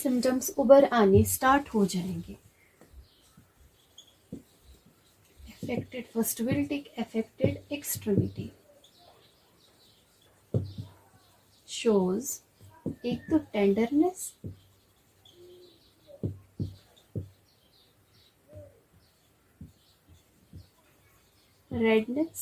उभर आने स्टार्ट हो जाएंगे. Affected, first will take affected extremity. Shows एक तो tenderness, redness,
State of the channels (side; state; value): both; identical; correlation 1.00